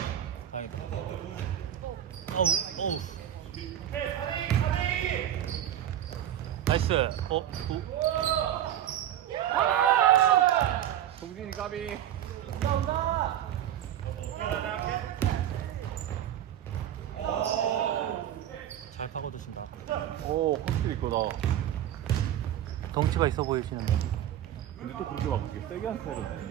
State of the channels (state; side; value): quieter; left; 11.2 dB